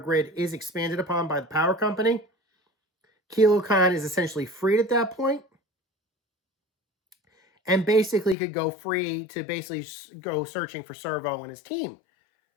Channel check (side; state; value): right; drops out; at 8.3 s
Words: is expanded upon by the power company. Kilo Khan is essentially freed at that point, and basically could go free to basically go searching for Servo and his team.